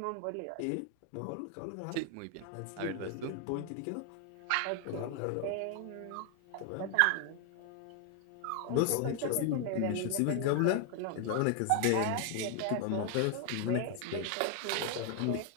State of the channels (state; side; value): different; both; correlation 0.00